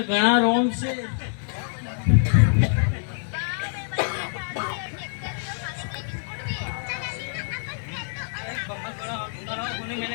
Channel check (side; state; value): right; silent; digital silence